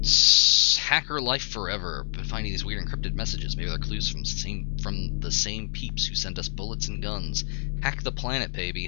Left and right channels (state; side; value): silent; right; 61 dB below the other